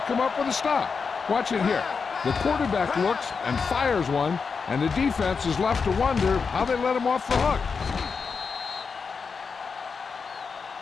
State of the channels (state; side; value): quieter; right; 5.3 dB